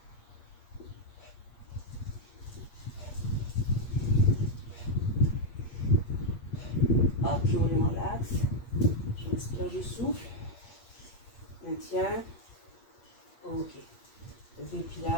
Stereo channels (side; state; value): right; late; 8.5 ms